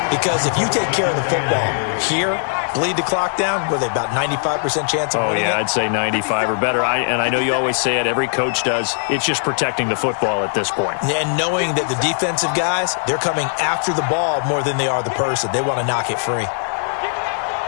Because if you take care of the football here, bleed the clock down, were they about 95% chance of winning? Oh, yeah, I'd say 95 or better. And I know you always say it, every coach does. It's just protecting the football at this point. And knowing that the defensive guys, they're coming after the ball more than they are the person. They want to knock it free.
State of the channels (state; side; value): silent; right; digital silence